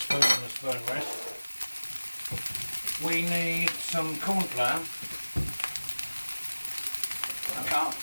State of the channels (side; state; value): both; inverted; correlation -1.00